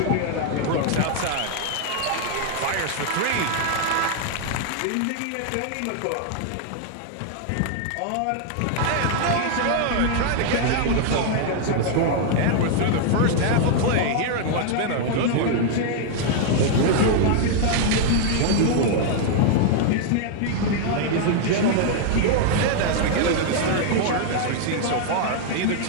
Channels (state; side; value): different; both; correlation 0.00